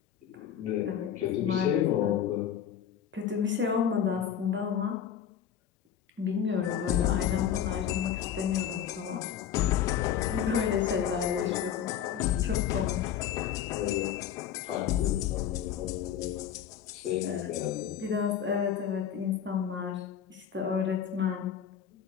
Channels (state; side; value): quieter; right; 9.1 dB